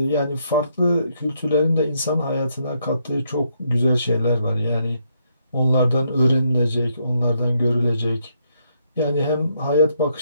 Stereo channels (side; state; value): both; inverted; correlation -0.75